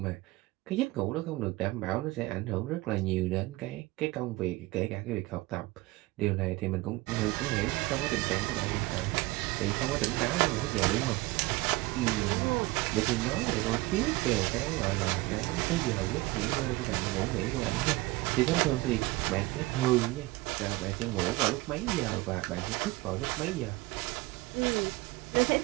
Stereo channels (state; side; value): quieter; left; 20.5 dB